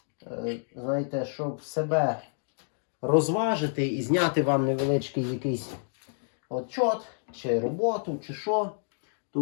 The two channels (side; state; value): right; silent; digital silence